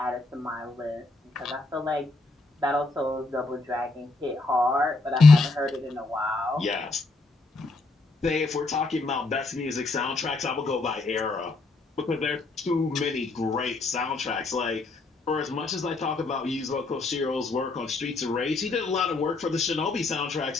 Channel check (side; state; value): right; quieter; 3.4 dB